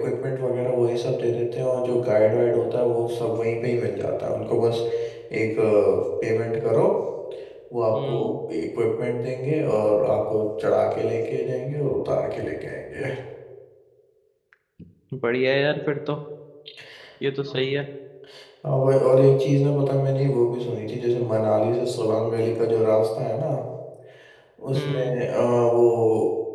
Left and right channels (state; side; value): identical; both; correlation 1.00